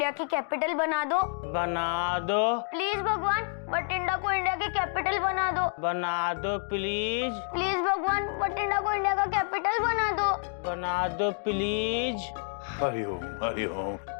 की कैपिटल बना दो। बना दो। प्लीज भगवान, बठिंडा को इंडिया की कैपिटल बना दो। बना दो प्लीज। प्लीज भगवान, बठिंडा को इंडिया का कैपिटल बना दो। बना दो प्लीज। हरिओम हरिओम।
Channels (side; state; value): right; silent; 59 dB below the other